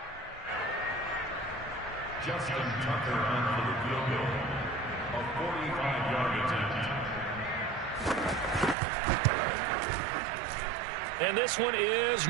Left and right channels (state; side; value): drops out; left; at 8.8 s